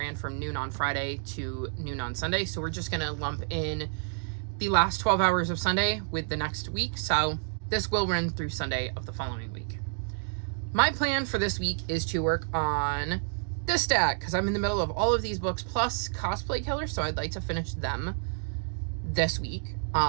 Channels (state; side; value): silent; left; digital silence